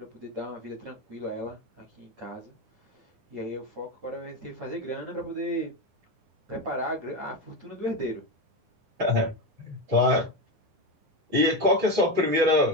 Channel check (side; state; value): left; late; 9.9 ms